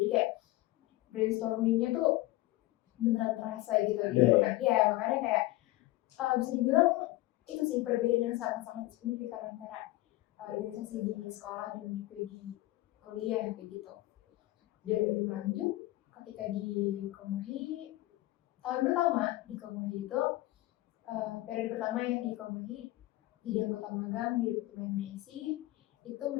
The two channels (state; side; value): quieter; right; 18.1 dB